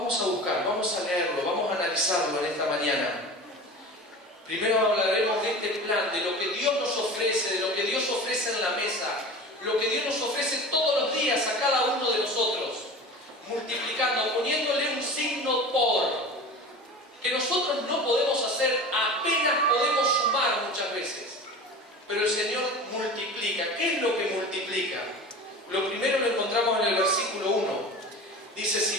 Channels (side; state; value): both; normal; correlation 0.34